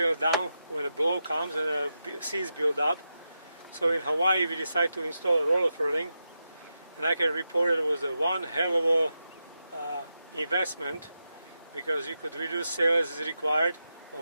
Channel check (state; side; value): inverted; both; correlation -0.88